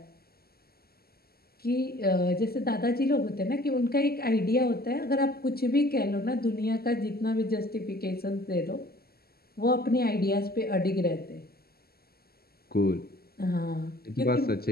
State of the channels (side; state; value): right; late; 0.45 ms